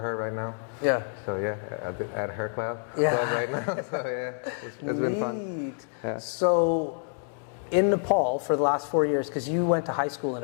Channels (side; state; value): right; silent; 59 dB below the other